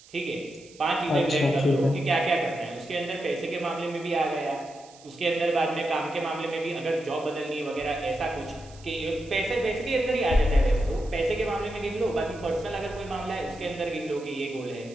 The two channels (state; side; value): noise; right; hiss, 23 dB below the sound